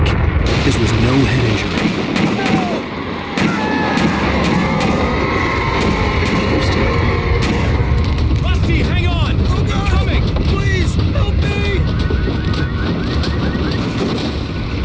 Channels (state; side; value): identical; both; correlation 1.00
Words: This was no head injury. Rusty, hang on! Oh God! Coming! Please, help me!